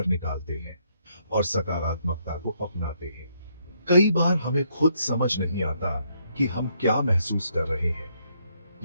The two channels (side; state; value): both; inverted; correlation -0.73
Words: निकालते हैं और सकारात्मकता को अपनाते हैं। कई बार हमें खुद समझ नहीं आता कि हम क्या महसूस कर रहे हैं।